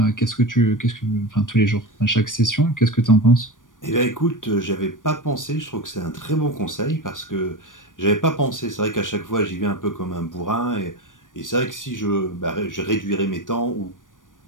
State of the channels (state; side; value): late; right; 0.88 ms